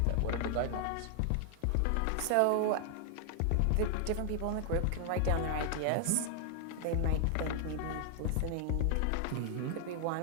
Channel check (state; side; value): different; both; correlation 0.00